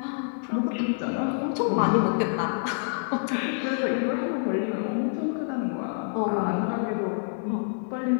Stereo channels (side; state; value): right; silent; digital silence